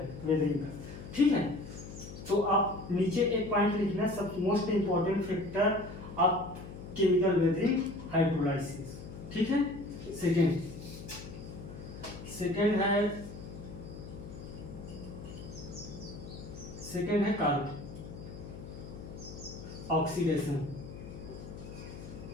वेदरिंग का, ठीक है। तो आप नीचे एक पॉइंट लिखना, सब most important factor of chemical weathering hydrolysis, ठीक है। सेकेंड है कार्बन ऑक्सीडेशन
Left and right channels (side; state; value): left; noise; hum, 12 dB below the sound